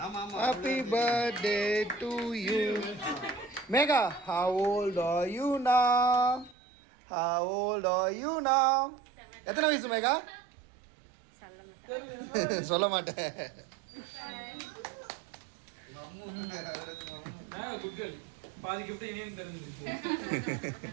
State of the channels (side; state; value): left; drops out; at 6.6 s